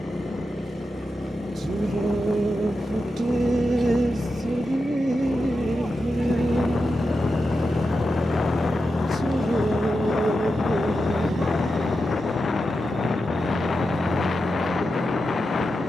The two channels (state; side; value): normal; both; correlation 0.89